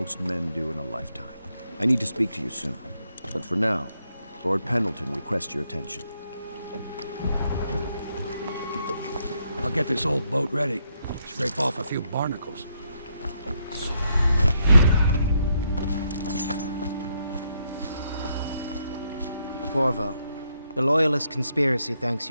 men do in a lifetime. I need to speak to you soon. But for now, Lord Pendleton requests your attention. I'll get this old boat ready. Scrape off a few barnacles. Corvo, the Loyalist conspiracy thanks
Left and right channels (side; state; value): both; inverted; correlation -0.76